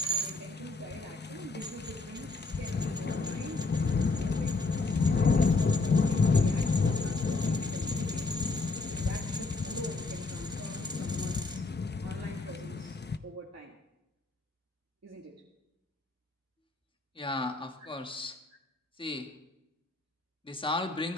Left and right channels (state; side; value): quieter; right; 3.6 dB